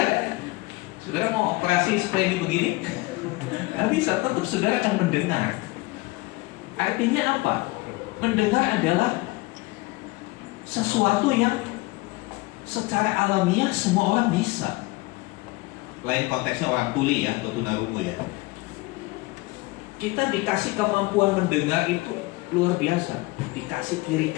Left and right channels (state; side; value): quieter; right; 22.3 dB